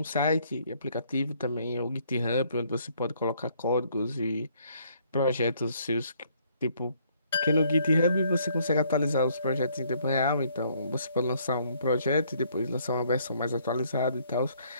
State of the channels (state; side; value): inverted; both; correlation -0.66